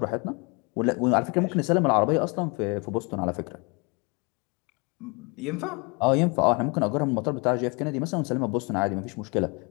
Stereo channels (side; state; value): right; quieter; 30.4 dB